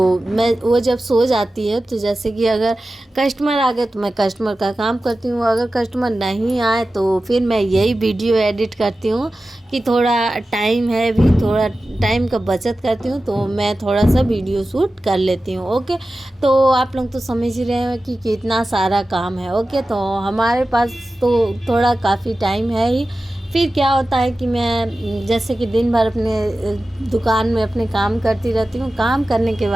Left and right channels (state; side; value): normal; both; correlation 0.95